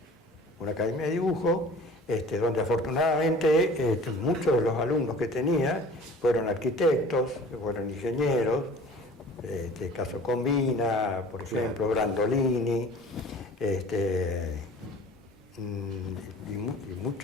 Una academia de dibujo, donde afortunadamente muchos de los alumnos que tenía fueron arquitectos, fueron ingenieros, caso Combina, por ejemplo, Brandolini, y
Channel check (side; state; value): both; normal; correlation 0.45